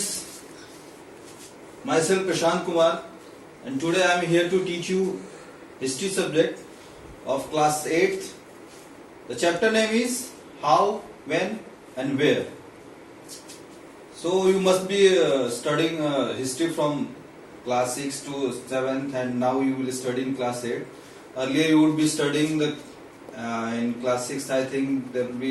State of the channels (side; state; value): both; identical; correlation 1.00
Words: Myself Prashant Kumar, and today I am here to teach you history subject of class 8th. The chapter name is How, When, and Where. So you must be studying history from class 6 to 7th, and now you will study in class 8. Earlier you would be studying the in class 6. I think there will